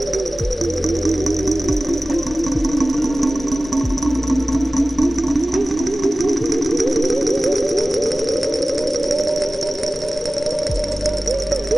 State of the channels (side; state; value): both; normal; correlation 0.97